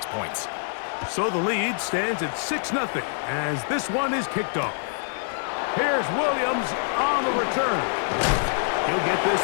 points. So the lead stands at 6-0 as this one is kicked off. Here's Williams on the return. He'll get this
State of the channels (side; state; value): right; silent; 62 dB below the other